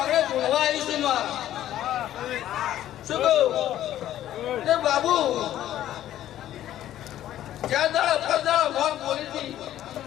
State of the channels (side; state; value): right; quieter; 12.5 dB